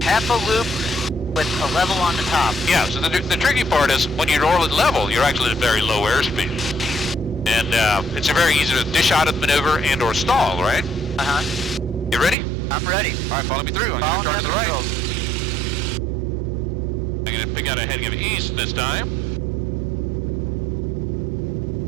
Half a loop with a level on the top. Yeah, so the tricky part is when you roll it level, you're actually at very low airspeed. And it's a very easy to dish out of the maneuver and or stall, right? Uh-huh. You ready? I'm ready. All right, follow me through. I'm going to turn to the right. Controls. I'm going to pick out a heading of east this time.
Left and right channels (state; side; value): drops out; left; at 12.4 s